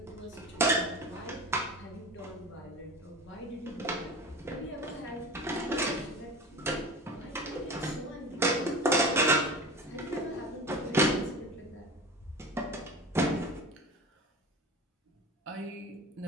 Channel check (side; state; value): both; normal; correlation 0.32